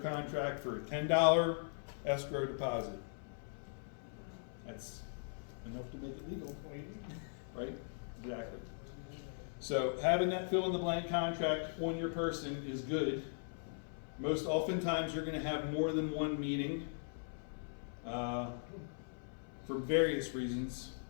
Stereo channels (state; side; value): silent; right; 51 dB below the other